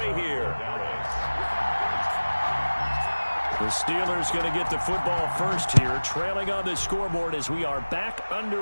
here. The Steelers going to get the football first here, trailing on the scoreboard as we are back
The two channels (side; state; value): both; inverted; correlation -1.00